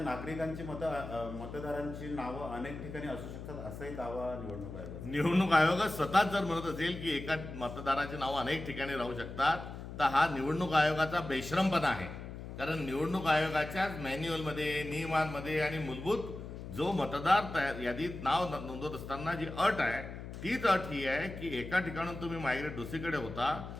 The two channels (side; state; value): left; noise; hum, 10 dB below the sound